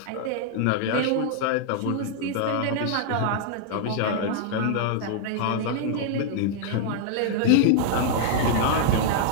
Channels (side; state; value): both; different; correlation -0.01